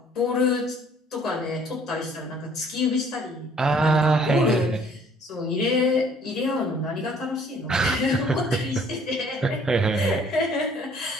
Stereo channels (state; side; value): normal; both; correlation 0.58